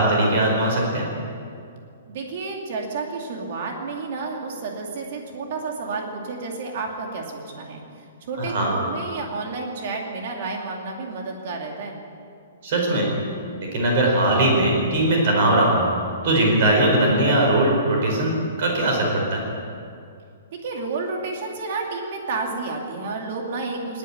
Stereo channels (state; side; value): inverted; both; correlation -0.44